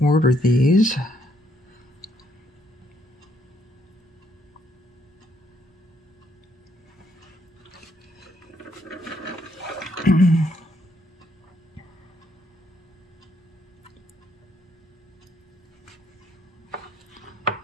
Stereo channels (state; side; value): normal; both; correlation 0.71